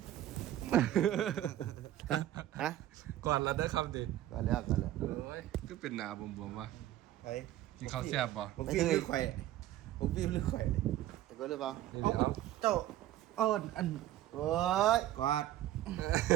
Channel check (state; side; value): quieter; left; 13.6 dB